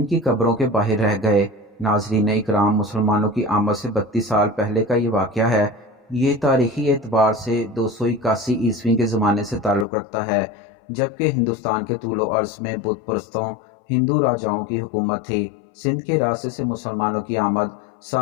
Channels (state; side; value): drops out; right; at 9.9 s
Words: कब्रों के बाहर रह गए। नाज़रीन इकराम, मुसलमानों की आमद से 32 साल पहले का ये वाक़या है। ये तारीख़ी एतबार से 281 ईस्वी के ज़माने से ताल्लुक़ रखता है, जबकि हिंदुस्तान के तूलो अर्ज़ में बुत परस्तों हिंदू राजाओं की हुकूमत थी। सिंध के रास्ते से मुसलमानों की आमद